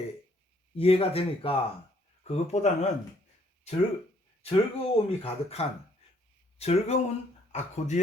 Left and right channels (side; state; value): both; normal; correlation 0.65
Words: 이해가 되니까, 그것보다는 즐거움이 가득한 즐거운